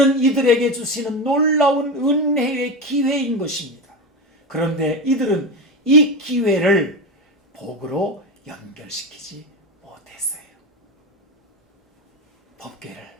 이들에게 주시는 놀라운 은혜의 기회인 것입니다. 그런데 이들은 이 기회를 복으로 연결시키지 못했어요. 법궤를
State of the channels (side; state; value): both; normal; correlation 0.19